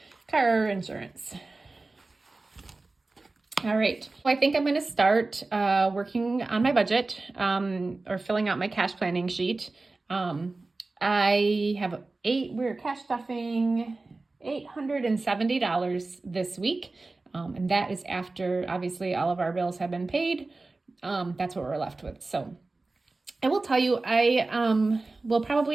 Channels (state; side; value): quieter; left; 3.4 dB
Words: car insurance. All right, well, I think I'm going to start working on my budget or filling out my cash planning sheet. I have we're cash stuffing $870 this week, and that is after obviously all of our bills have been paid. That's what we're left with. So I will tell you, I will